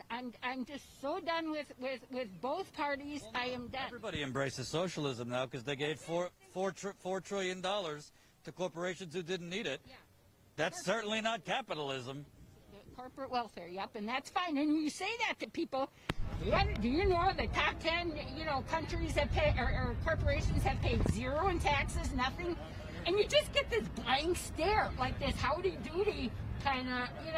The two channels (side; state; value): both; identical; correlation 1.00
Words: I'm just so done with both parties. Well, I am done. Everybody embraces socialism now because they gave $4 trillion to corporations who didn't need it. Yeah. That's certainly not capitalism. Corporate welfare, yep, and that's fine. And when you say that to people, do you know the top 10, countries have paid, or corporations have paid zero in taxes, nothing? And you just get this blank stare, like this howdy-doody kind